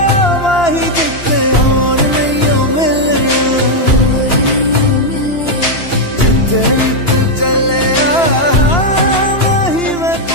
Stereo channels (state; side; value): late; right; 2.9 ms